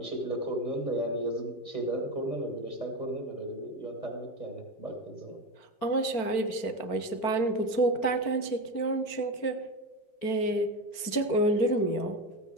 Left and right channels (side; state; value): right; late; 4.4 ms